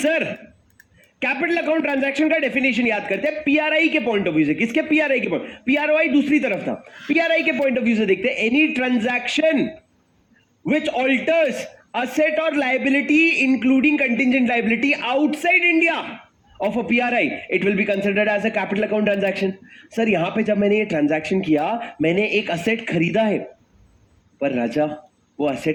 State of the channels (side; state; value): both; identical; correlation 1.00